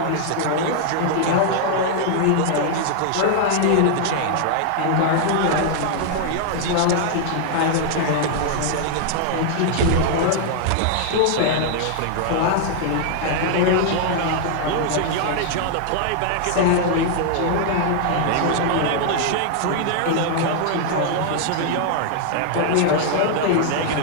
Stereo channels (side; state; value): both; different; correlation 0.00